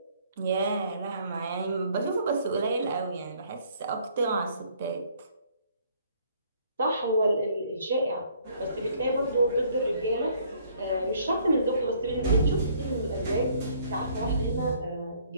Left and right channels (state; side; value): inverted; both; correlation -0.62